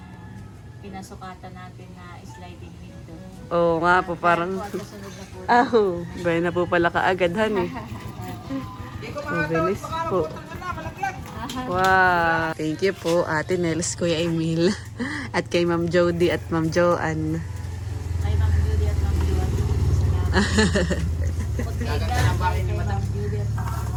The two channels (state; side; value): identical; both; correlation 1.00